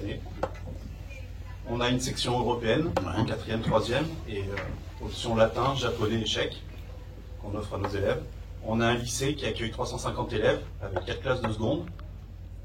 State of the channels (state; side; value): identical; both; correlation 1.00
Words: On a une section européenne, Ouais. en 4e, 3e, et option latin, japonais et tchèque, qu'on offre à nos élèves. On a un lycée qui accueille 350 élèves, avec 4 classes de seconde,